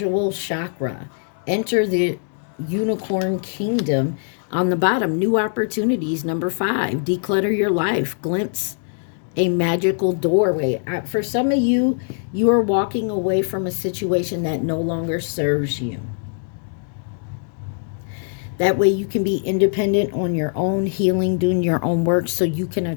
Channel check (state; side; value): silent; right; digital silence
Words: chakra. Enter the unicorn kingdom. On the bottom, new opportunities. Number 5, declutter your life. Glimpse a magical doorway. For some of you, you are walking away from a situation that no longer serves you. That way you can be independent on your own, healing, doing your own work, so you can